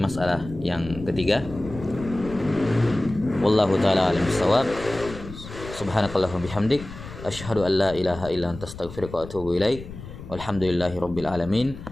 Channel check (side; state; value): left; noise; rumble, 13 dB below the sound